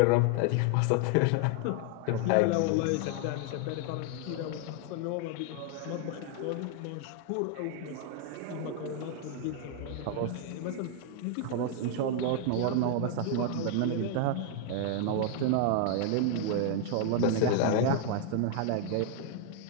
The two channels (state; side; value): different; both; correlation 0.00